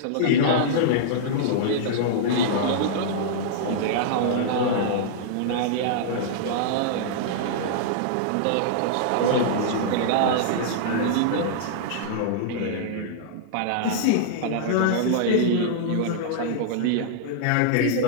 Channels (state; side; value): different; both; correlation -0.02